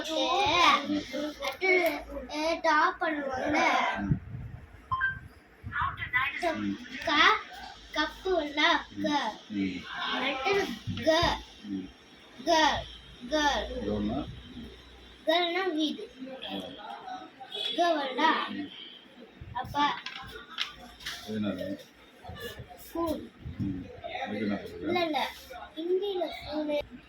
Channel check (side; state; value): both; identical; correlation 1.00